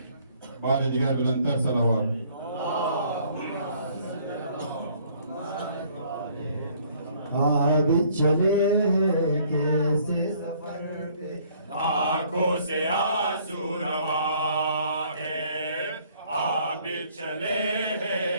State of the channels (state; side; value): inverted; both; correlation -0.60